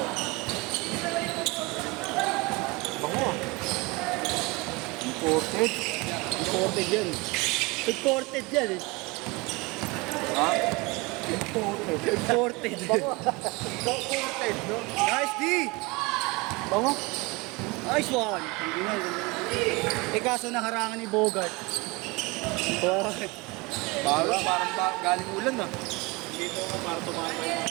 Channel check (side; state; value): left; quieter; 25.5 dB